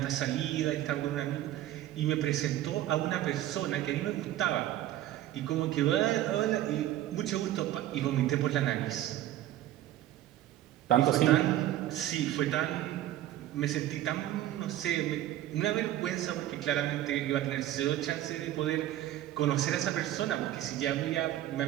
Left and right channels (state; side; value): quieter; left; 13.4 dB